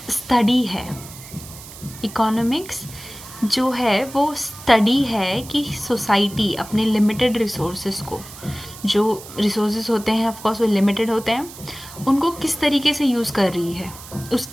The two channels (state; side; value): noise; right; hiss, 16 dB below the sound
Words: study है. economics जो है वो study है कि society अपने limited resources को, जो resources होते हैं of course वो limited होते हैं, उनको किस तरीके से यूज़ कर रही है,